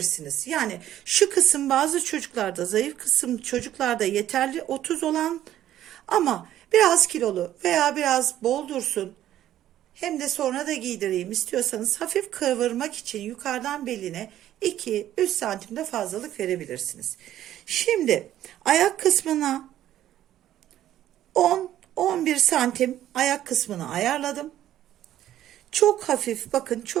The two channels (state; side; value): quieter; left; 12.4 dB